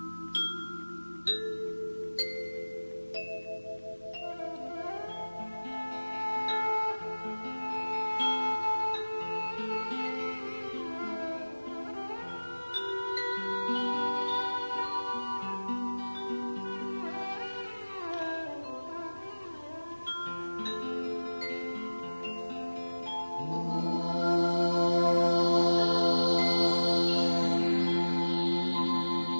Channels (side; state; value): both; inverted; correlation -1.00